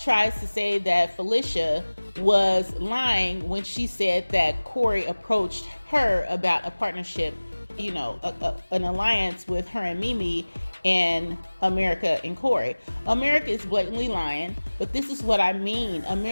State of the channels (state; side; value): inverted; both; correlation -1.00